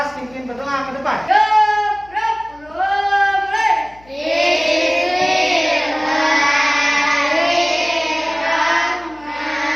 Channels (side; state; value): left; noise; hum, 26 dB below the sound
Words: pimpin berdoa ke depan.